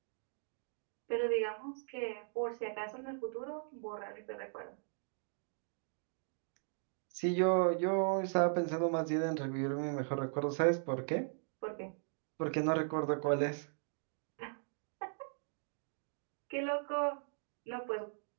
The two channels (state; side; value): silent; left; digital silence